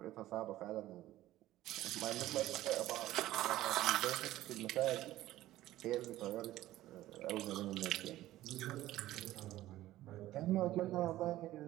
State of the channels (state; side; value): quieter; left; 15.1 dB